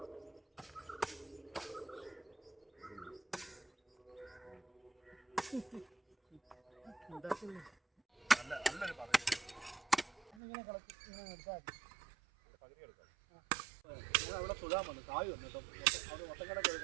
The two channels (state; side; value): drops out; left; at 10.4 s